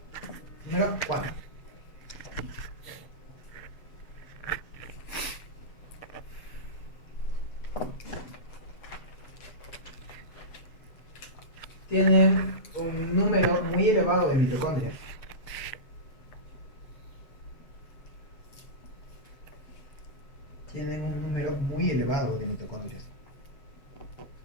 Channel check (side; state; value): right; late; 7.3 ms